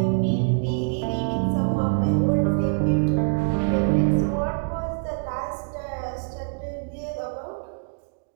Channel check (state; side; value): silent; left; digital silence